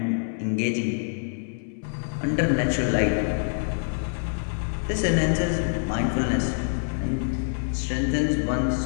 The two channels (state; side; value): silent; right; 61 dB below the other